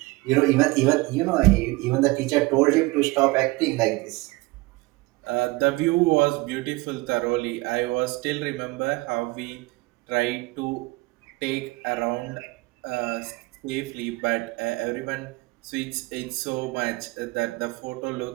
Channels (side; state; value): left; quieter; 22.7 dB